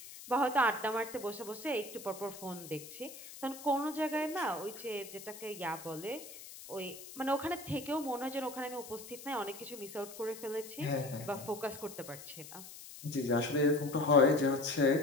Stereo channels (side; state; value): left; noise; hiss, 14 dB below the sound